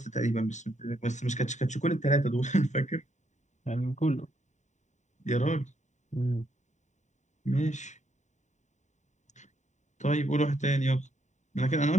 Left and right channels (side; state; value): right; late; 0.34 ms